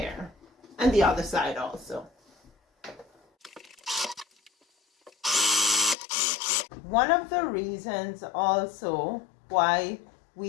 and the other side also. One of the reasons also why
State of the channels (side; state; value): right; drops out; at 6.0 s